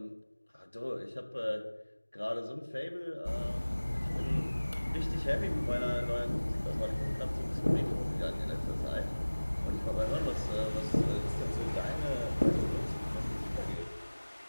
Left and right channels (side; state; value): both; inverted; correlation -1.00